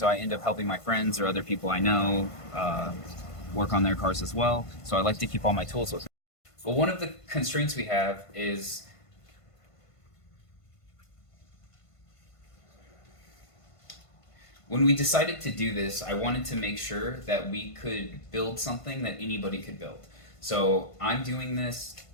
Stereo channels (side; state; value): right; late; 1.5 ms